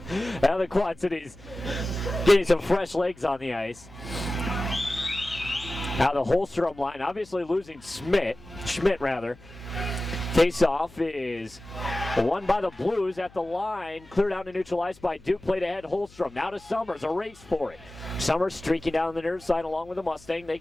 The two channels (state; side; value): noise; left; hum, 24 dB below the sound